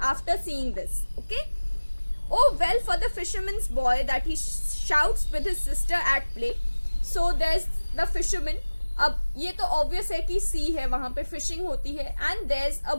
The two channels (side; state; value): both; inverted; correlation -1.00